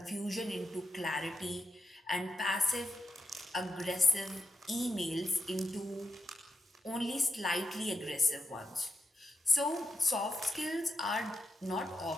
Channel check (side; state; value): both; normal; correlation 0.87